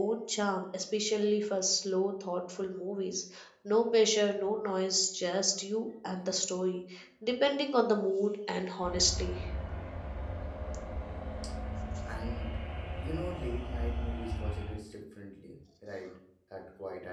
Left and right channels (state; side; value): identical; both; correlation 1.00